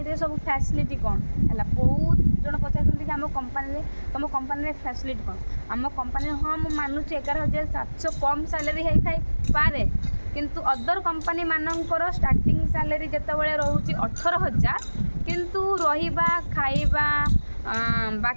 रे सब फैसिलिटी कौन है बहुत जन पचार आम कंपानी तुम कंपानी फैसिलिटी कौन आम कंपानी हाँ मुझे मानुची 11,700 कम सैलरी होता है पारे किंतु अदर कंपानी मानकर स्टार्टिंग सैलरी जितेबाला रोचे 18,000 किंतु रहिबा खाइबा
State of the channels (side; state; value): both; inverted; correlation -1.00